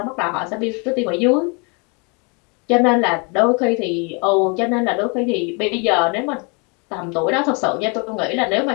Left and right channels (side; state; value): right; quieter; 33.1 dB